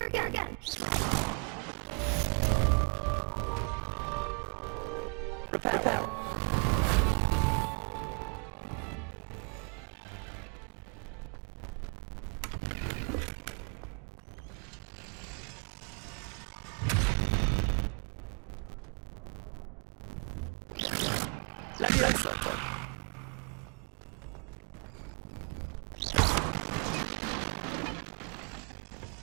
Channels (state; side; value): quieter; left; 39.2 dB